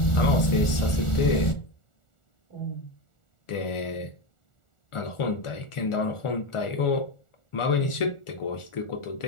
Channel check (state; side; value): late; right; 1.4 ms